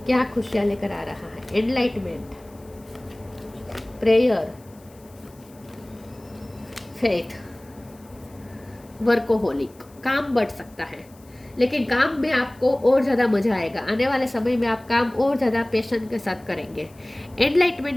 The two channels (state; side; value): noise; left; hiss, 28 dB below the sound